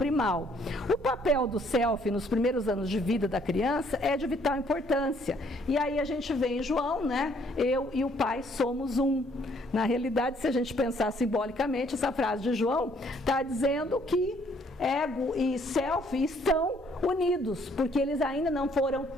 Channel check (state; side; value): normal; both; correlation 0.65